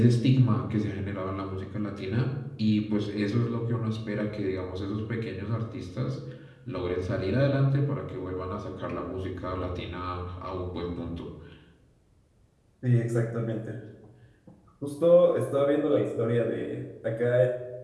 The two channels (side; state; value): both; identical; correlation 1.00